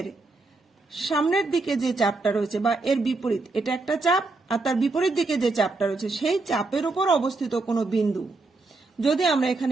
সামনের দিকে যে চাপটা রয়েছে বা এর বিপরীত, এটা একটা চাপ, আর তার বিপরীত দিকে যে চাপটা রয়েছে সেই চাপের উপর অবস্থিত কোনো বিন্দু যদি আমরা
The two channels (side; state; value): left; quieter; 3.5 dB